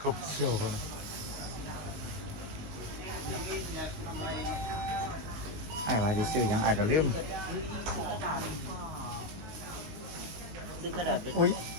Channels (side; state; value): left; late; 19 ms